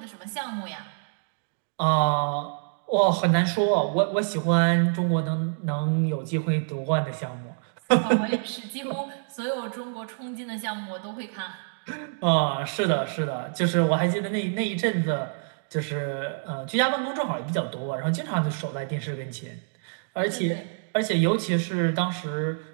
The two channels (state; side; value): silent; left; digital silence